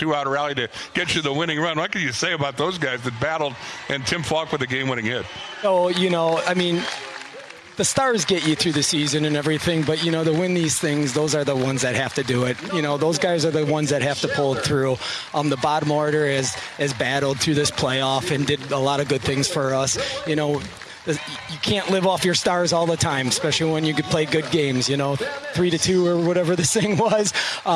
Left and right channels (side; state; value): both; identical; correlation 1.00